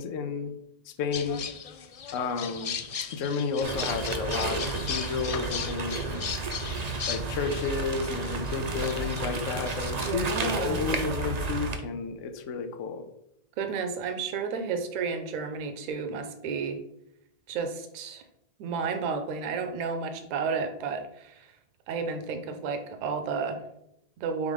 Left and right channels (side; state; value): left; late; 1.9 ms